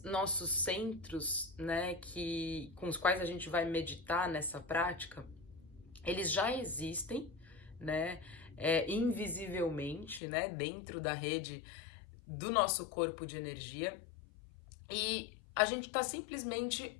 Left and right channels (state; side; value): drops out; right; at 10.2 s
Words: nossos centros, né, com os quais a gente vai meditar nessa prática, eles já existem, né, invisivelmente, né, dentro da rede do nosso corpo de energia, e a gente está